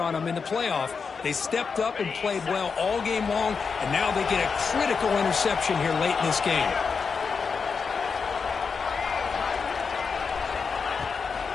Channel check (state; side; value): quieter; right; 5.4 dB